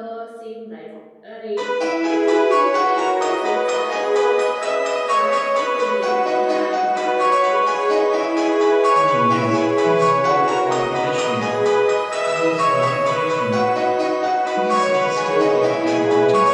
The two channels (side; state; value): both; identical; correlation 1.00